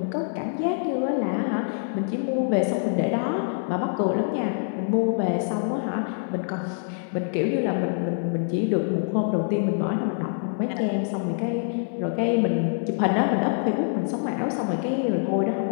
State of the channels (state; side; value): silent; right; digital silence